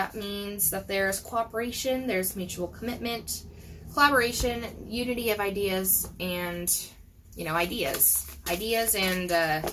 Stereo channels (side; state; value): both; identical; correlation 1.00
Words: means that there's cooperation, there's mutual commitment, collaboration, unity of ideas, and, you know, ideas and